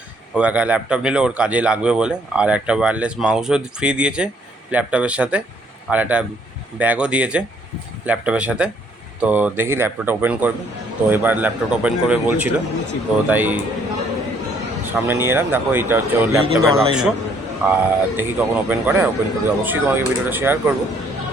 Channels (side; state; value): both; normal; correlation 0.65